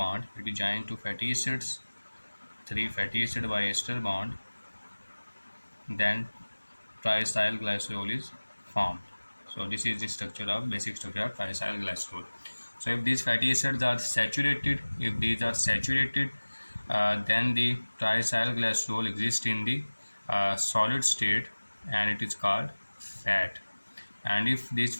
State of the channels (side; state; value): both; inverted; correlation -1.00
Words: it joins to fatty acids, 3 fatty acid by ester bond, then triacylglycerol is formed. So this is the basic structure of triacylglycerol. So if these fatty acids are saturated, then the triacylglycerol exists in the solid state, and it is called fat. And if these